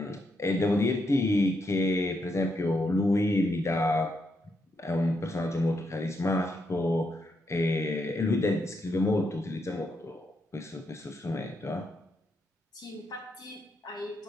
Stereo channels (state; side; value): normal; both; correlation 0.80